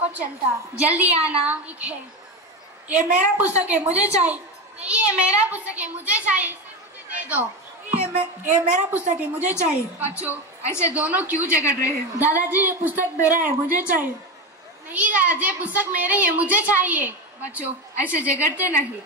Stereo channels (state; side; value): normal; both; correlation 0.17